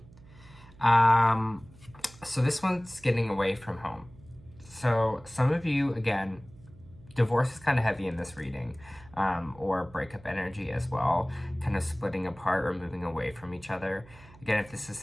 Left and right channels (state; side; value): noise; right; hum, 23 dB below the sound